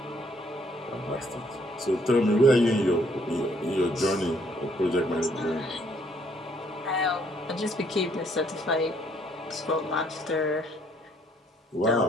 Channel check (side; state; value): both; normal; correlation 0.66